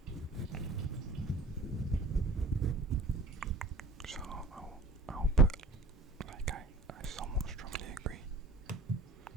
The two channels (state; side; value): quieter; left; 3.1 dB